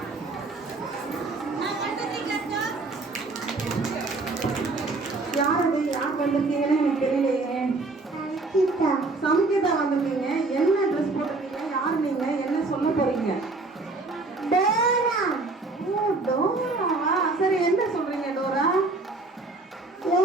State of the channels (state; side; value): quieter; left; 3.4 dB